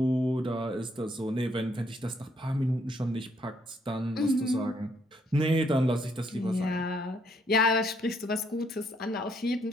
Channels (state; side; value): normal; both; correlation 0.71